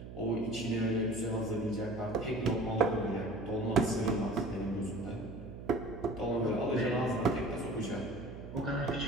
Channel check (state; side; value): noise; right; hum, 11 dB below the sound